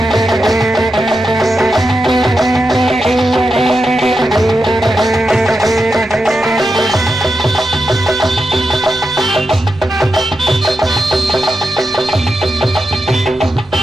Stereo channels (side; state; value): both; normal; correlation 0.88